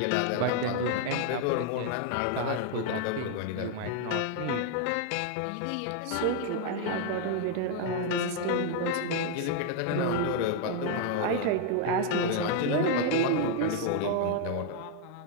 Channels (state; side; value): different; both; correlation 0.00